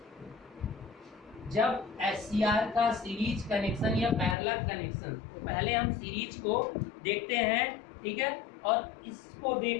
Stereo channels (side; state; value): right; drops out; at 4.4 s